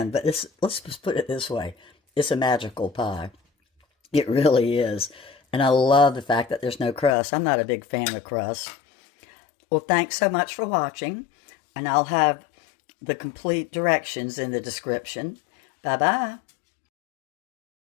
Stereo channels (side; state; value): right; drops out; at 7.1 s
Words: but let's just put it this way. It's a magical pie. It really is. And I love the fact that there's no crust. I'm not a big fan of crust. Well, thanks so much for watching, and I'll have the complete directions in the description. Bye-bye.